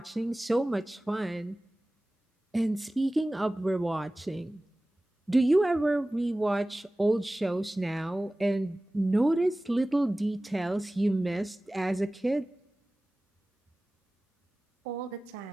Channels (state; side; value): normal; both; correlation 0.97